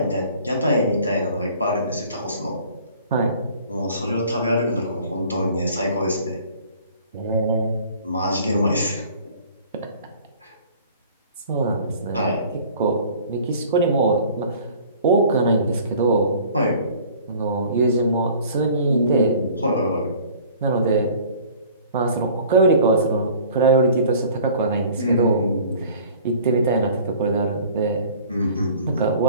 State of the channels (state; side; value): inverted; both; correlation -0.50